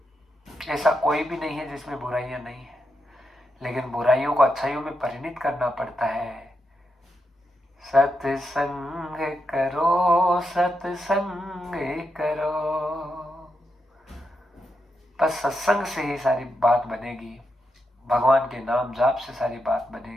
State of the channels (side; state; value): both; normal; correlation 0.84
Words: ऐसा कोई भी नहीं है जिसमें बुराइयां नहीं है, लेकिन बुराइयों को अच्छाइयों में परिणित करना पड़ता है। सत्संग करो, सत्संग करो, बस सत्संग से ही सारी बात बनेगी। भगवान के नाम जाप से सारी बात